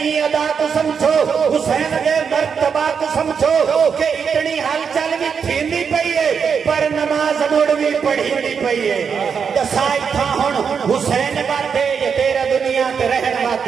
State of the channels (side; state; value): left; quieter; 6.5 dB